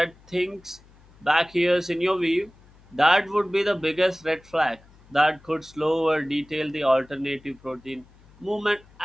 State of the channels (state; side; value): noise; left; hum, 27 dB below the sound